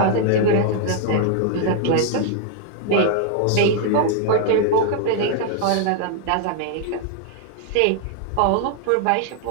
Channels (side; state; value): both; different; correlation 0.00